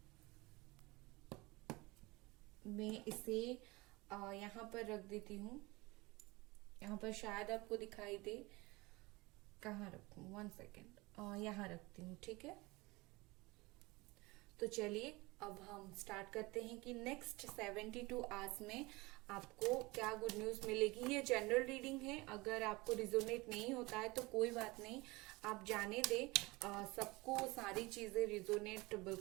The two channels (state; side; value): quieter; left; 23.1 dB